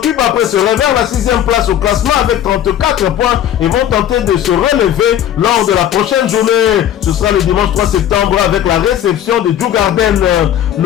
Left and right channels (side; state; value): right; quieter; 10.7 dB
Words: après ce réveil la 6e place au classement avec 34 points et vont tenter de se relever lors de la prochaine journée. Ce sera le dimanche 3 septembre avec la réception de Djurgården.